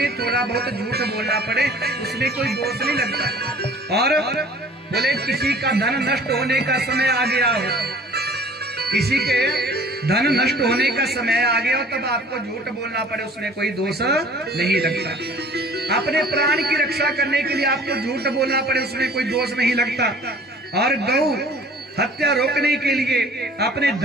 थोड़ा बहुत झूठ बोलना पड़े उसमें कोई दोष नहीं लगता। और बोले किसी का धन नष्ट होने का समय आ गया हो, किसी के धन नष्ट होने का समय आ गया हो, तब आपको झूठ बोलना पड़े उसमें कोई दोष नहीं लगता। अपने प्राण की रक्षा करने के लिए आपको झूठ बोलना पड़े उसमें कोई दोष नहीं लगता। और गौ हत्या रोकने के लिए, अपने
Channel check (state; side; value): normal; both; correlation 0.49